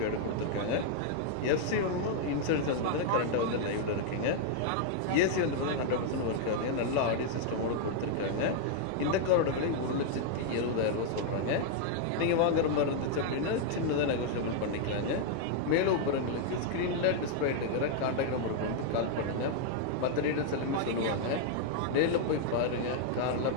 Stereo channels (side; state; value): both; different; correlation -0.01